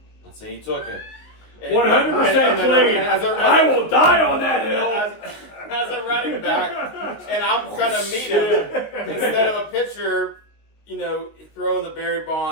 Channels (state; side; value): late; right; 19 ms